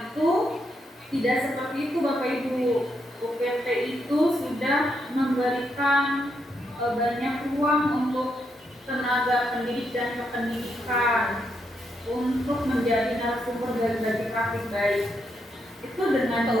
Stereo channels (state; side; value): normal; both; correlation 0.80